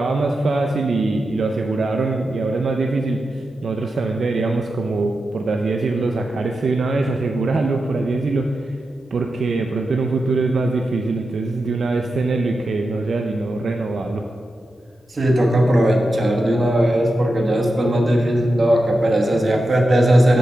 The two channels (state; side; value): normal; both; correlation 0.90